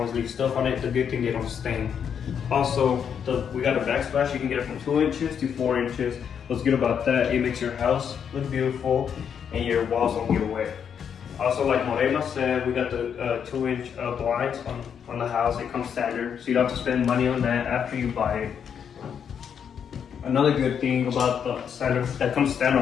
leave stuff on it. The good thing, they don't stain. Also, we got a backsplash. You can get it from 2 inches to 4 inches. What's good about that, it makes your house look beautiful and your walls don't get wet. Also, like Morena said, we got the 2-inch blinds on the house. It comes standard, so you don't have to spend money on that after you buy it. Another good thing about the standard that comes standard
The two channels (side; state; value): right; quieter; 7.7 dB